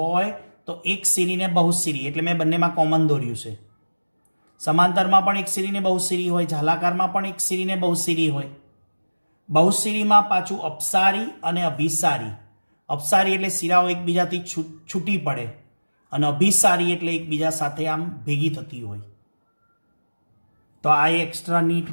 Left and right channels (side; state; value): both; inverted; correlation -1.00